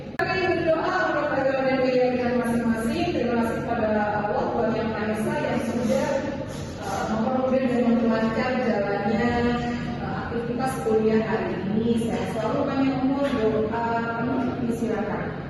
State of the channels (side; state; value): both; identical; correlation 1.00